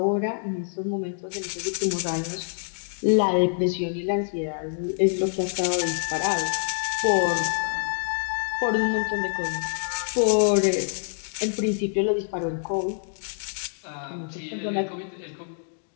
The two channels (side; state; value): right; silent; digital silence